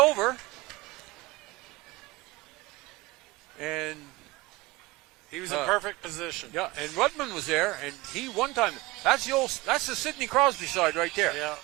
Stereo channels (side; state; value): left; quieter; 21.2 dB